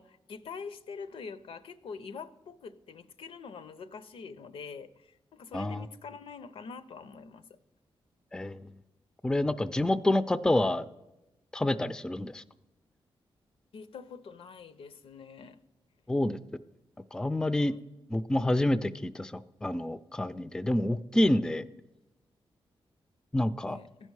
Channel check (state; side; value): normal; both; correlation 0.95